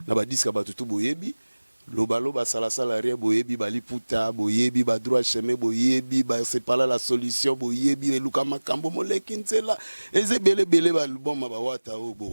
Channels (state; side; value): inverted; both; correlation -1.00